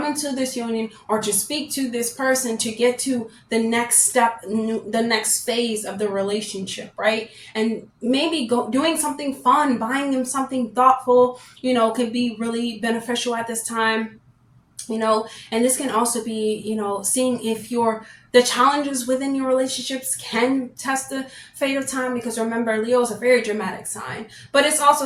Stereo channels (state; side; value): identical; both; correlation 1.00